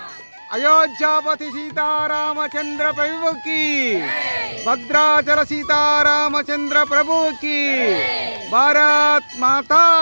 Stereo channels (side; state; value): both; inverted; correlation -1.00